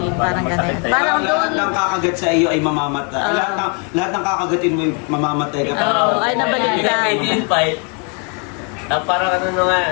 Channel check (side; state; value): right; quieter; 35.0 dB